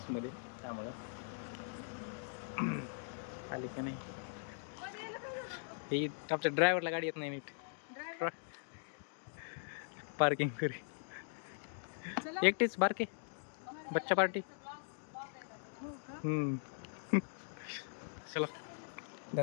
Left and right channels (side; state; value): right; silent; digital silence